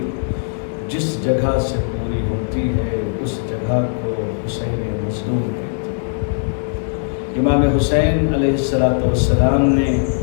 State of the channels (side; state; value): right; silent; digital silence